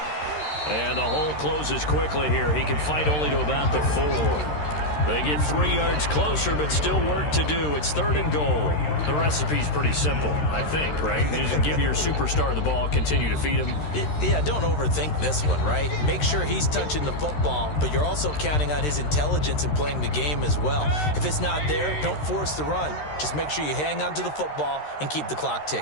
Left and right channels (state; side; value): late; right; 13 ms